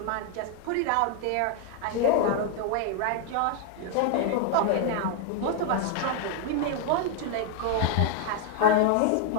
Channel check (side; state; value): both; different; correlation 0.00